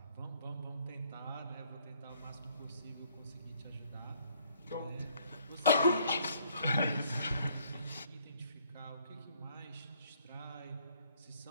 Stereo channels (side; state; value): both; inverted; correlation -0.65